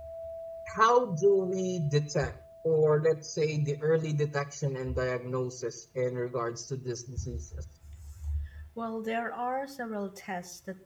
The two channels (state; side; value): identical; both; correlation 1.00